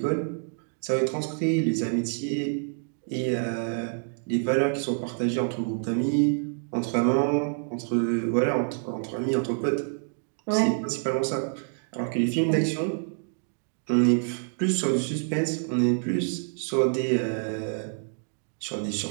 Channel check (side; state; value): left; silent; 60 dB below the other